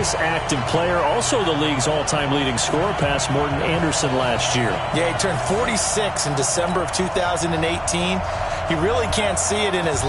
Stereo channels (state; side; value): identical; both; correlation 1.00